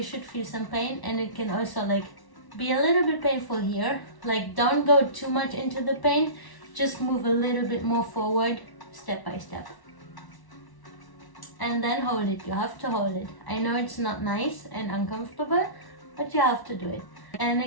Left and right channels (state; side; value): late; right; 1.0 ms